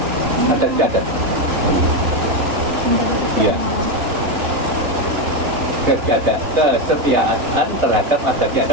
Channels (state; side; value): late; left; 3.5 ms